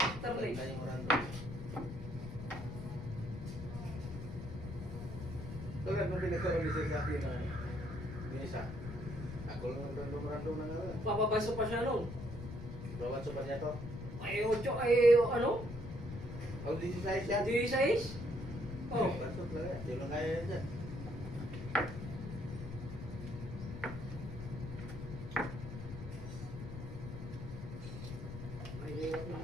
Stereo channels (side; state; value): left; noise; rumble, 8 dB below the sound